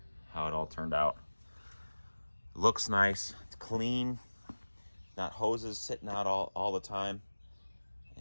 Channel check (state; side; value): inverted; both; correlation -1.00